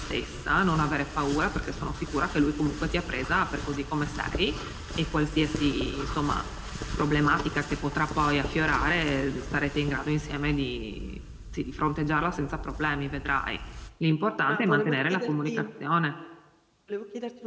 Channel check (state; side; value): identical; both; correlation 1.00